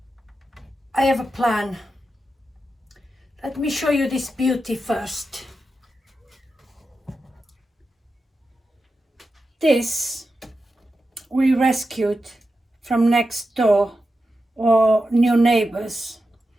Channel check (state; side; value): normal; both; correlation 0.90